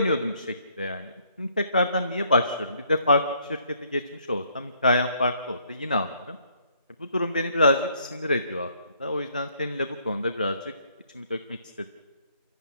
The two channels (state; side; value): inverted; both; correlation -0.67